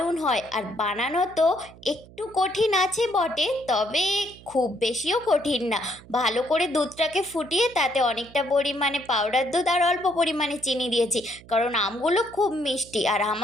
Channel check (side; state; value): right; noise; hum, 21 dB below the sound